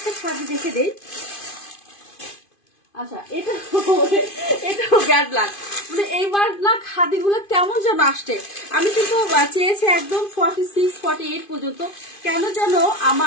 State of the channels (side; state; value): right; late; 2.5 ms